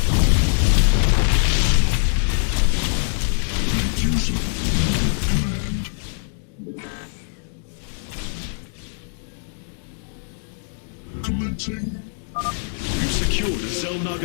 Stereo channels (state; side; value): silent; right; digital silence